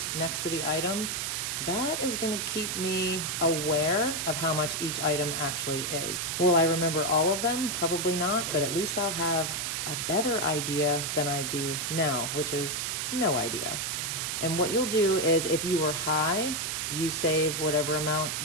next to the item, that is gonna keep me aware of how much each item actually is. Will I remember all of them? Probably not, but at least I'll have a better idea than I do now, which is no idea. And what you'll do is if you were high, you save whatever amount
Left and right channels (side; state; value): right; noise; hiss, 1 dB below the sound